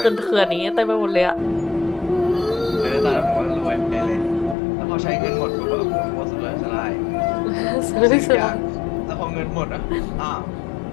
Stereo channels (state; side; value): drops out; right; at 4.5 s